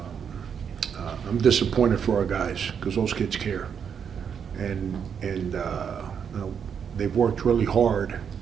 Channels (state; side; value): quieter; left; 7.4 dB